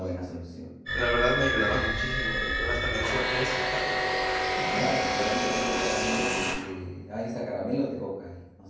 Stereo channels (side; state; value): both; identical; correlation 1.00